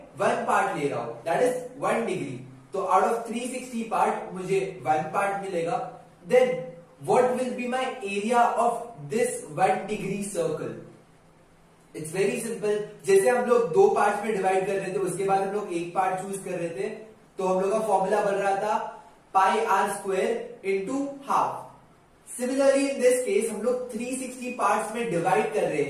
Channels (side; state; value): both; identical; correlation 1.00